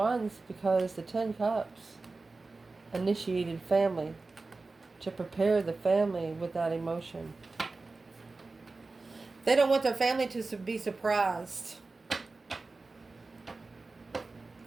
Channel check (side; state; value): left; quieter; 3.6 dB